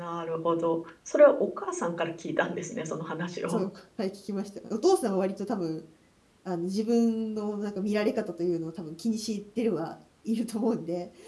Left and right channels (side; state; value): both; identical; correlation 1.00